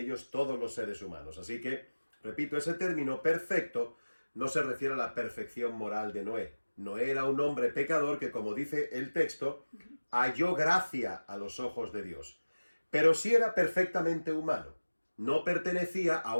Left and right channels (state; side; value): inverted; both; correlation -1.00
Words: todos los seres humanos. Así que, repito, ese término perfecto no se refiere a la perfección moral de Noé. Noé era un hombre pecador que, como dice el texto, halló gracia a los ojos de Dios. Pero sí era perfectamente humano. no pertenecía a